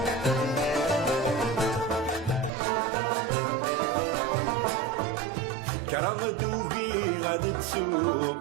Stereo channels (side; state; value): left; drops out; at 2.5 s